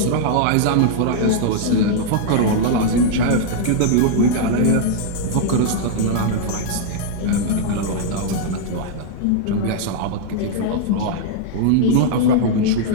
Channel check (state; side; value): different; both; correlation -0.01